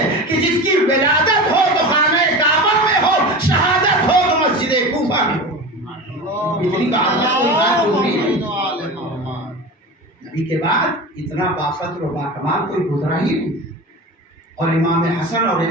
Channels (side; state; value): both; normal; correlation 0.30